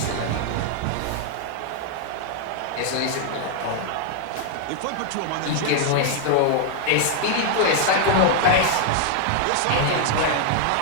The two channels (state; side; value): different; both; correlation 0.00